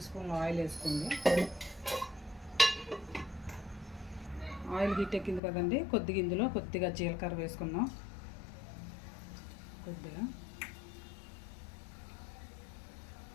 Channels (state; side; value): drops out; right; at 5.4 s